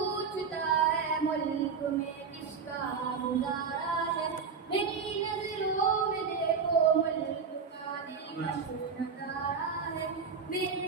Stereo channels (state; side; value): quieter; left; 5.8 dB